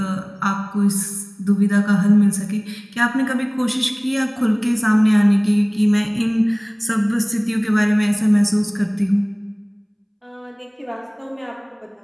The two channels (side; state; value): both; identical; correlation 1.00